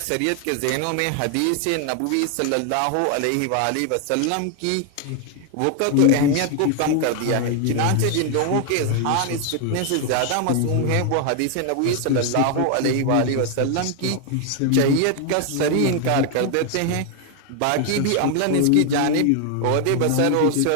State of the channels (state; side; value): different; both; correlation 0.00